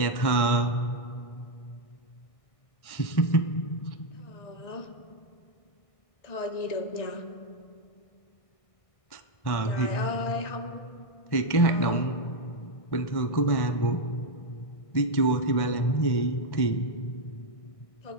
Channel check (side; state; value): right; late; 1.6 ms